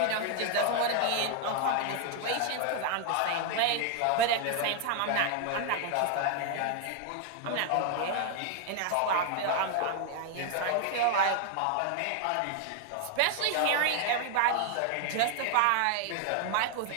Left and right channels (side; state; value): both; different; correlation 0.00